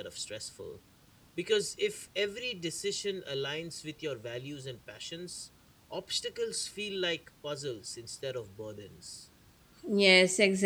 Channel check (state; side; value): identical; both; correlation 1.00